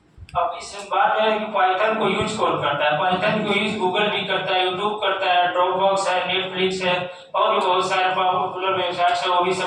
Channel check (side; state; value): both; identical; correlation 1.00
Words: अब इस बात है कि पाइथन को यूज कौन करता है, पाइथन को यूज गूगल भी करता है, यूट्यूब करता है, ड्रॉपबॉक्स है, नेटफ्लिक्स है और भी बहुत सारे पॉपुलर वेबसाइट्स है, वो भी